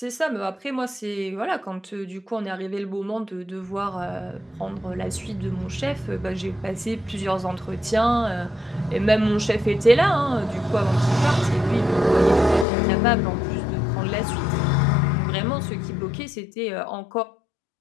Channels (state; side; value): drops out; right; at 12.7 s